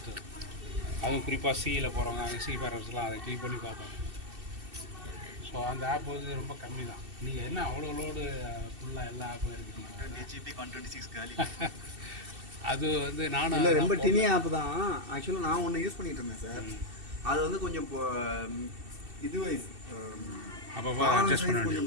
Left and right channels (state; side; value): late; left; 2.7 ms